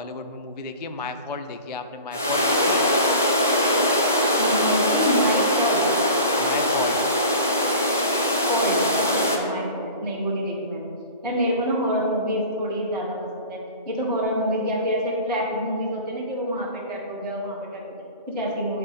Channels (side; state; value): both; inverted; correlation -0.37